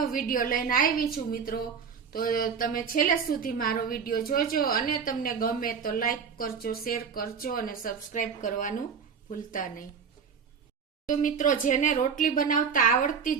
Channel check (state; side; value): quieter; left; 6.4 dB